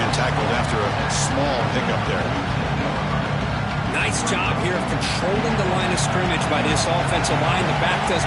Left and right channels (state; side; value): identical; both; correlation 1.00